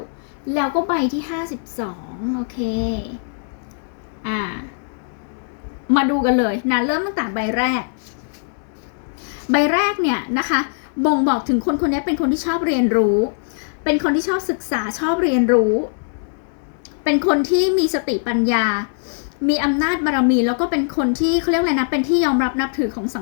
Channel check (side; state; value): right; silent; 65 dB below the other